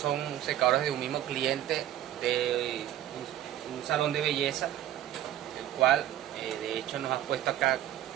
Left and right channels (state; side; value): quieter; left; 12.3 dB